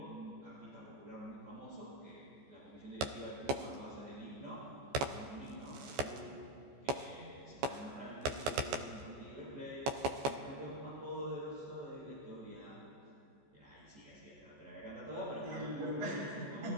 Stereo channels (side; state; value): left; late; 14 ms